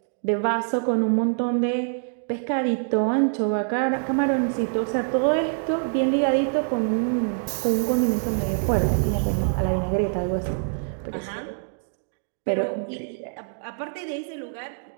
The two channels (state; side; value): silent; left; digital silence